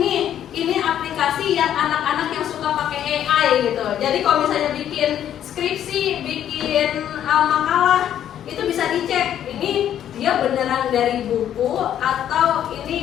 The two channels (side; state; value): right; quieter; 10.5 dB